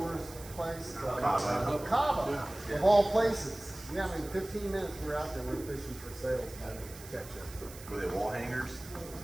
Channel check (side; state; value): right; noise; hiss, 16 dB below the sound